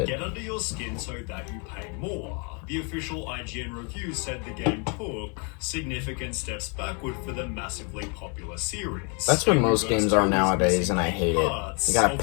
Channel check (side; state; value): right; quieter; 35.3 dB